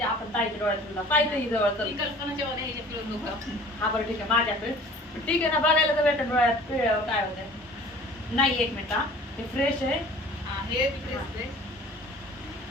आपण ताईच्या डोळ्यात पिळला पाहिजे जवळ. कल्पनाच्या हा बरं ठीक आहे, माझ्याकडे ठीक आहे ना, बघायला तर भेटेल डोळ्यात पिळल्यावर काय होतंय. नाही, एक मिनिट, हा हे फ्रेश आहे. हे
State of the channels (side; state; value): both; normal; correlation 0.47